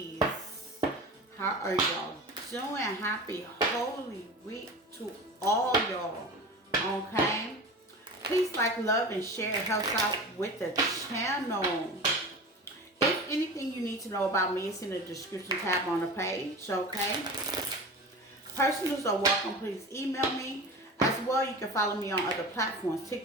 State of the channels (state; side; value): normal; both; correlation 0.33